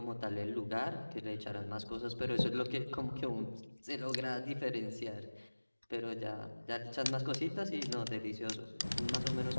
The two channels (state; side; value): inverted; both; correlation -1.00